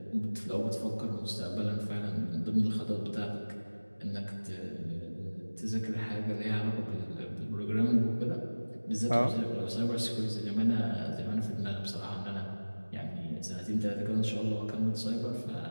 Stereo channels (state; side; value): inverted; both; correlation -1.00